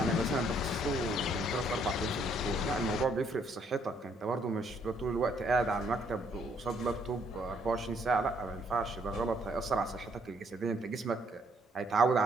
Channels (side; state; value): both; normal; correlation 0.68